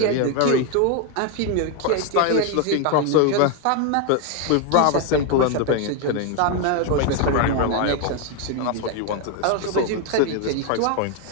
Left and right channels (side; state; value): both; different; correlation 0.01